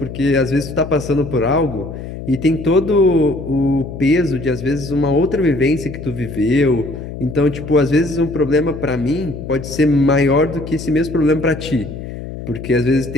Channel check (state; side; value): noise; left; hum, 10 dB below the sound